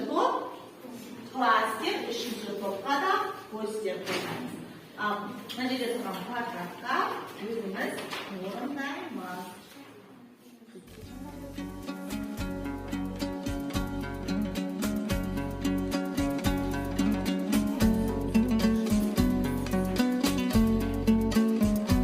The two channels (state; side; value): identical; both; correlation 1.00